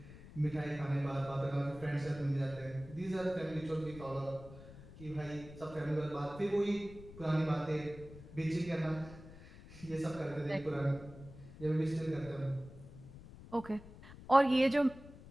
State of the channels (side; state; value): left; noise; rumble, 17 dB below the sound